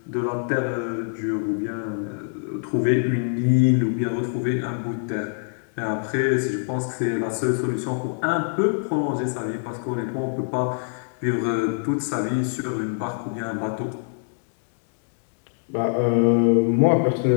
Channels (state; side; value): silent; right; digital silence